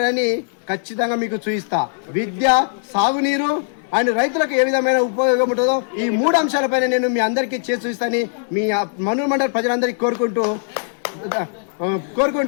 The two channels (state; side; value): silent; right; 61 dB below the other